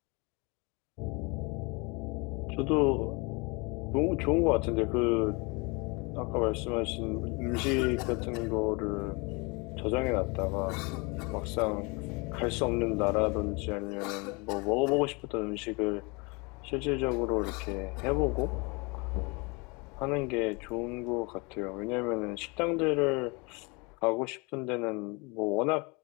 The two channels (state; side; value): quieter; right; 28.7 dB